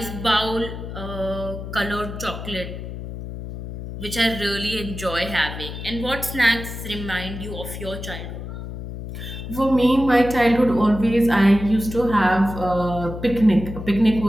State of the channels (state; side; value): noise; left; hum, 9 dB below the sound